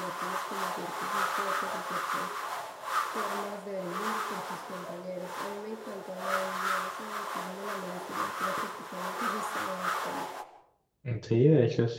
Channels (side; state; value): both; identical; correlation 1.00